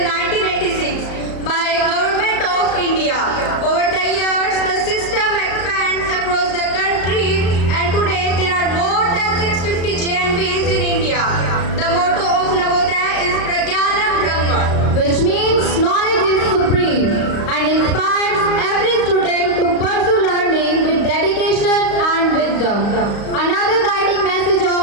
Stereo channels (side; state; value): right; late; 34 ms